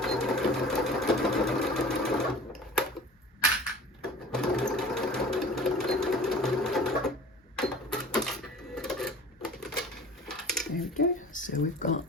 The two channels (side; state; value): both; normal; correlation 0.42